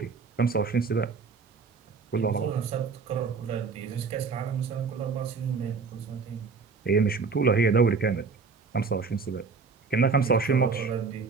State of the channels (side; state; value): left; quieter; 4.9 dB